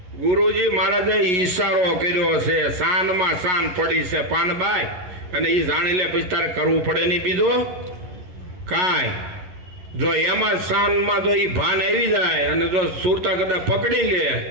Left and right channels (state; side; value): late; left; 11 ms